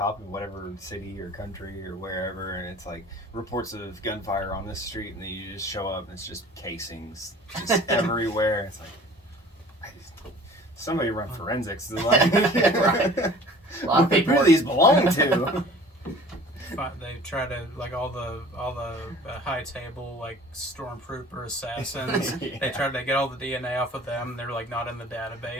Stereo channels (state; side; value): normal; both; correlation 0.47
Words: in whatever city or country or wherever, and it's like reports of gunfire on this street, and then you just show up and it's just casings just everywhere. It's like, somebody run forensics. Like, Right. A lot of people. Who do these belong to? They try to like all the high table like stormtrooper assassins. Yeah. They try to get all the DNA off of them. They're like not in the